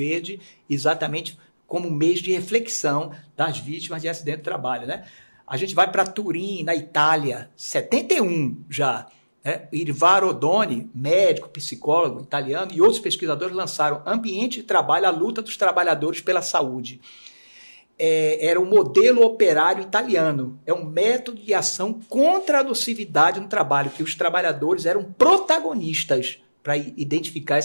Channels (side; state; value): both; inverted; correlation -1.00